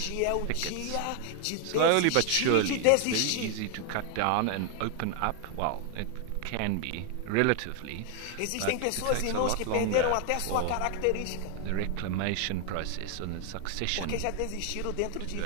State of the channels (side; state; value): both; different; correlation 0.00